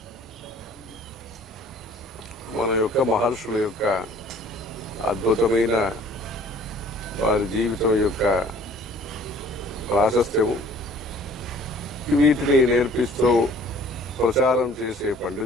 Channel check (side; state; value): both; normal; correlation 0.53